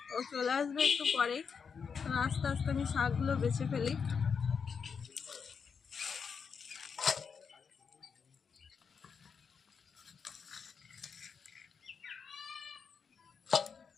ও চলে আসবে একটু পরেই। তো আস্তে আস্তে আমি শাকগুলো বেছে ফেলি।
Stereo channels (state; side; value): quieter; right; 6.1 dB